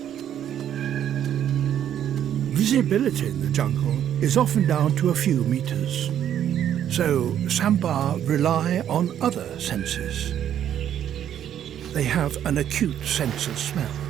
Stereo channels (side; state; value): left; quieter; 10.2 dB